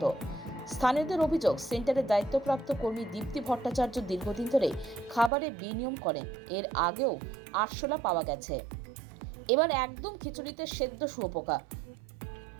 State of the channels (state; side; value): drops out; left; at 5.3 s